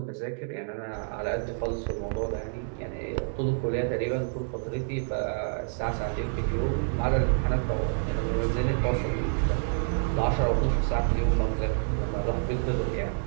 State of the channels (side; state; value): left; silent; digital silence